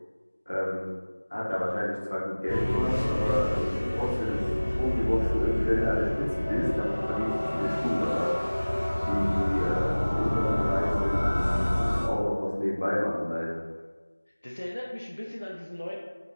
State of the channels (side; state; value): both; inverted; correlation -1.00